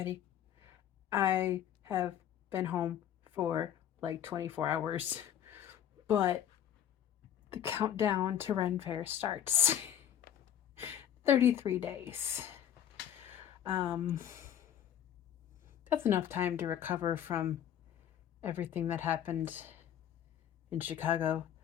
I have been home for like 24 hours, but the countdown to Ren Fair starts. 33 days. Um, that's enough time to recover from everything that happened in Chicago.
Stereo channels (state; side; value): quieter; right; 10.1 dB